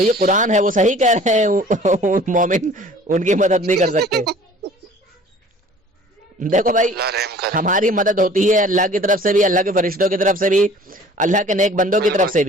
قرآن ہے، وہ صحیح کہہ رہے ہیں، مومن ان کی مدد نہیں کر سکتے. دیکھو بھائی، اللہ رحم کرے. ہماری مدد ہوتی ہے اللہ کی طرف سے بھی، اللہ کے فرشتوں کی طرف سے بھی، اللہ کے نیک بندوں کی طرف سے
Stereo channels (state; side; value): normal; both; correlation 0.49